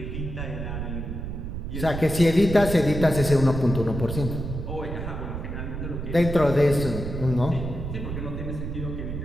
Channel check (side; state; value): right; noise; rumble, 5 dB below the sound